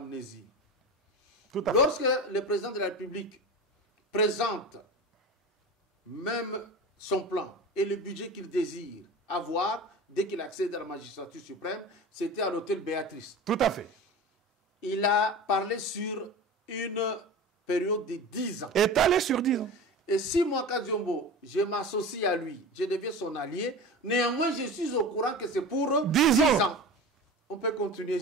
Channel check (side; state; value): both; normal; correlation 0.31